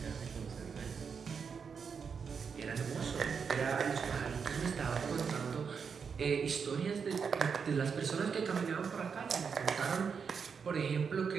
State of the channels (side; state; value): left; quieter; 6.1 dB